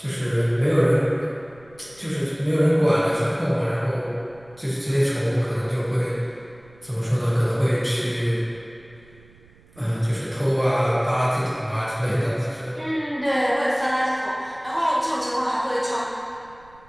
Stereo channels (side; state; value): right; noise; rumble, 27 dB below the sound